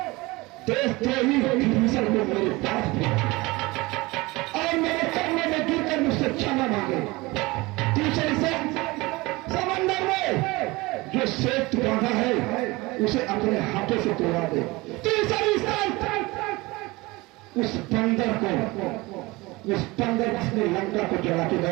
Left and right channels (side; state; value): left; quieter; 22.4 dB